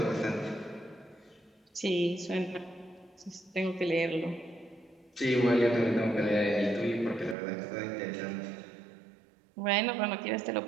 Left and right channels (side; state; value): left; drops out; at 7.4 s